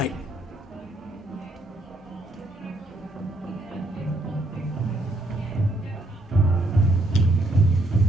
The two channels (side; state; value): both; normal; correlation 0.72